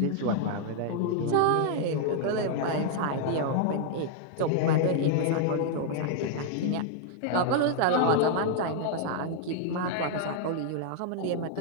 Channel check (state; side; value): different; both; correlation -0.01